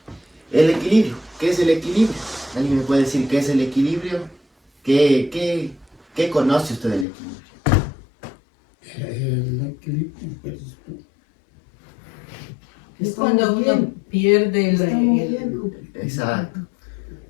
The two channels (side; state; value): right; drops out; at 7.1 s